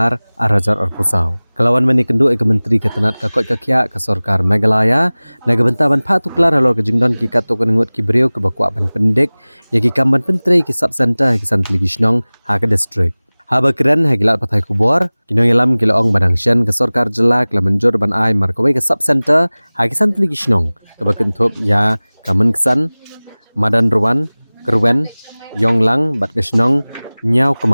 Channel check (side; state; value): both; inverted; correlation -1.00